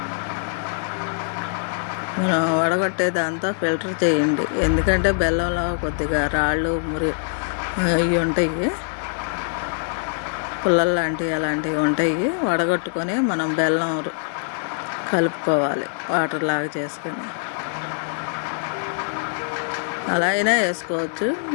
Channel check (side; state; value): right; silent; digital silence